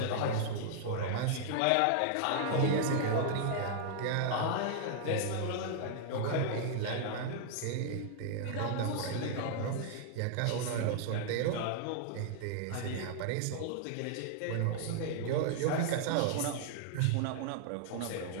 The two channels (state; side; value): different; both; correlation -0.01